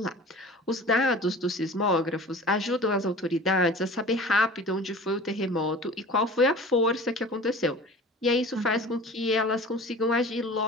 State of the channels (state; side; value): normal; both; correlation 0.40